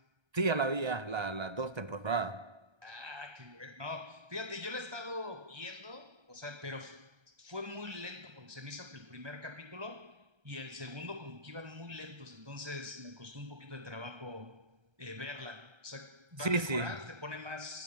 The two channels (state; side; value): late; left; 1.3 ms